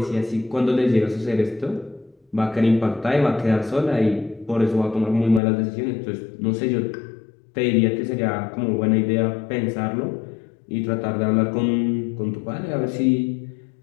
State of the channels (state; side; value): drops out; right; at 5.4 s